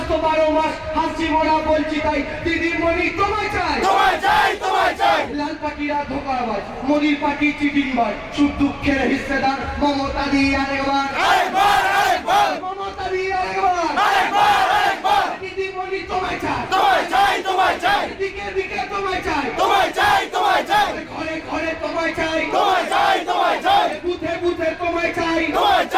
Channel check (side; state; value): both; identical; correlation 1.00